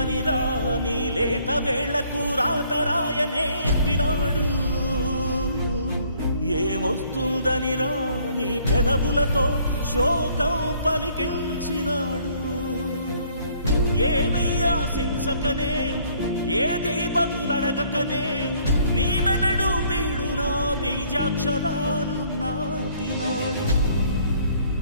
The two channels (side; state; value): both; inverted; correlation -0.62